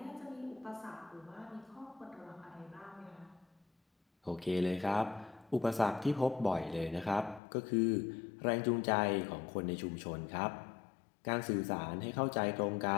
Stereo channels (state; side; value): drops out; right; at 7.4 s